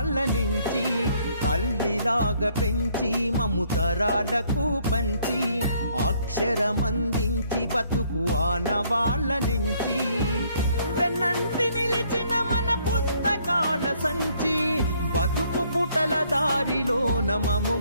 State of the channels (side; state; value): both; inverted; correlation -0.66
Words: నుంచి తల్లిలాగా పెంచి మము తరాలకు పంచి అక్షరమందించి బతుకు ఆనవాళ్ళ నుంచి వెన్నంటి నిలిచిన మన పుస్తకాల సంచి బతుకు పుటల దారిలో నమము